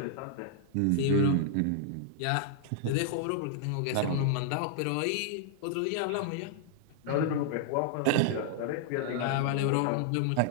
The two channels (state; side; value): different; both; correlation -0.01